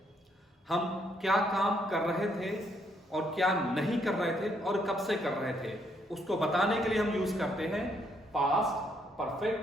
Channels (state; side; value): normal; both; correlation 0.72